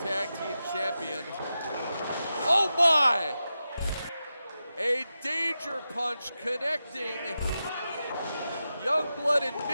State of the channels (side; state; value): both; inverted; correlation -0.90